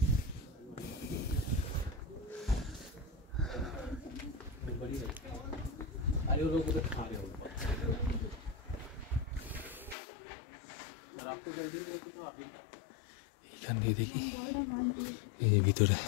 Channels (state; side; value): drops out; right; at 10.0 s